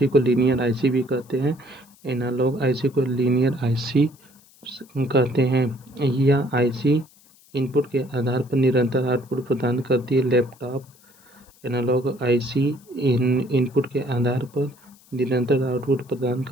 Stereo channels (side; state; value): left; noise; hiss, 28 dB below the sound